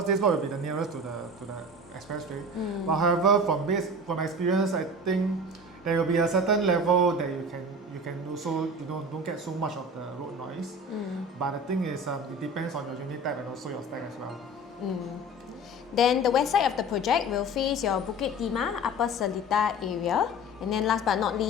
this block will be the nearest to the expressway. But however, from experience, I think there will be a certain level that you can also don't get so much of the road noise. But the thing is, it depends on your unit type and also your stack as well. Then the west side of the project will face your Bukit Timah, Upper Seletar area. And then last but not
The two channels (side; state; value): both; normal; correlation 0.36